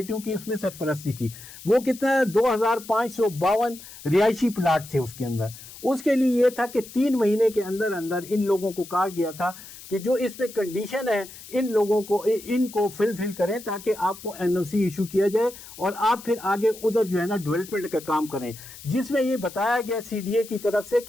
کی اس میں سرپرستی تھی. وہ کتنا 2552 رہائشی پلاٹ تھے اس کے اندر. اس کے لیے یہ تھا کہ 3 مہینے کے اندر اندر ان لوگوں کو کہا گیا تھا کہ جو اس میں کنڈیشن ہے ان کو فل کریں تاکہ آپ کو این او سی ایشو کیا جائے اور آپ پھر آگے ادھر جو ہے نا ڈیولپمنٹ کا کام کریں، جس میں یہ بتایا گیا سی ڈی اے کی طرف سے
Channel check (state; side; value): noise; left; hiss, 16 dB below the sound